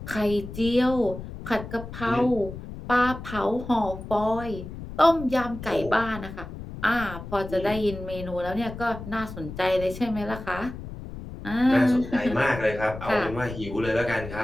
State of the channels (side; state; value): left; noise; rumble, 11 dB below the sound